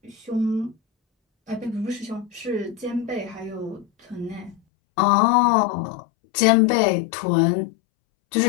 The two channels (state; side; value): drops out; right; at 4.6 s